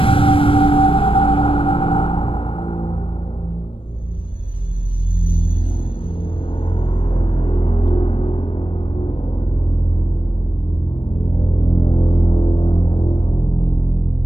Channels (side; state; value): right; late; 0.26 ms